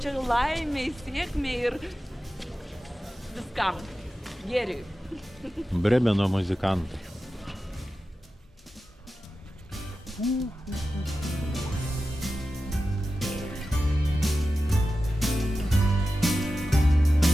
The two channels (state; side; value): normal; both; correlation 0.93